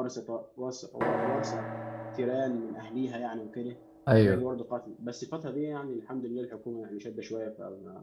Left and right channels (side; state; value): both; identical; correlation 1.00